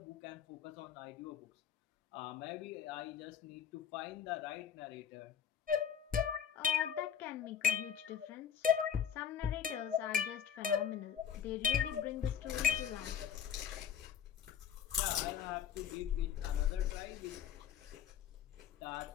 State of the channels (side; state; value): right; quieter; 8.5 dB